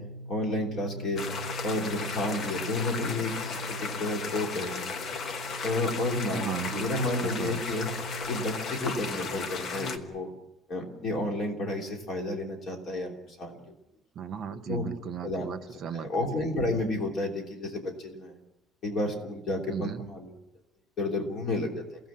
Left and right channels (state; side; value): normal; both; correlation 0.36